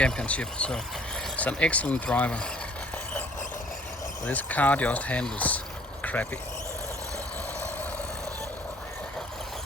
so it's an excellent driver. This car just handles crappy.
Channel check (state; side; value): normal; both; correlation 0.55